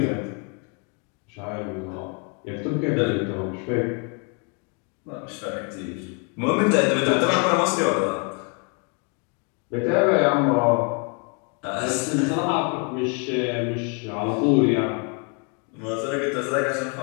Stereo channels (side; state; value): right; quieter; 35.4 dB